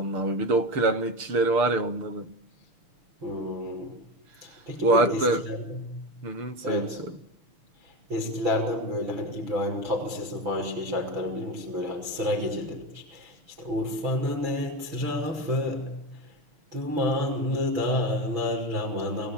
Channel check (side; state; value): left; late; 6.7 ms